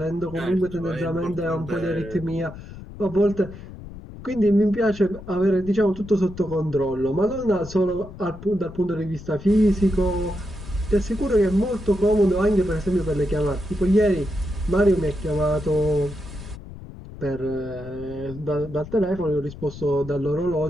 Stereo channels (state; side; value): noise; left; rumble, 14 dB below the sound